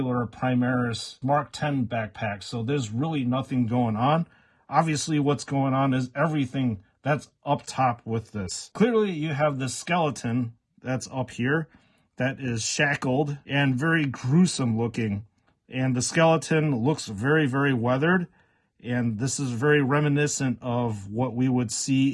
Primaris Mark 10 backpack. So there's really nothing going on. Obviously what's going on is everything that's up top with this. Clearly you have this skeleton that's up here that is shackled and very gruesome looking. And the skeleton looks very, very weathered. And this is very reminiscent of what we would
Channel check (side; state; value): both; identical; correlation 1.00